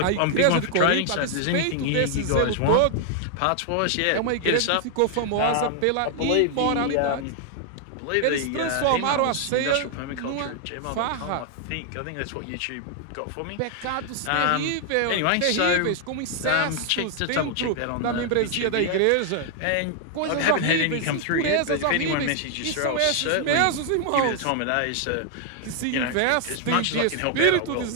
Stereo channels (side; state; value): both; different; correlation 0.00